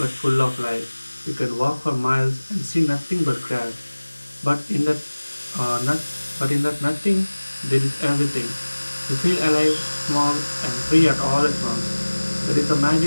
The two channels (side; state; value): both; inverted; correlation -1.00